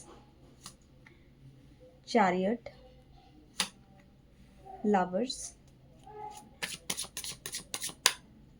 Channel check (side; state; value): both; identical; correlation 1.00